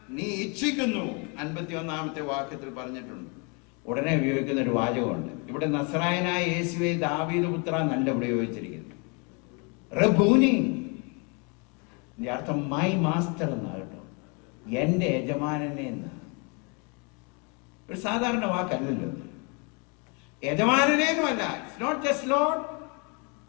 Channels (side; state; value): right; quieter; 33.6 dB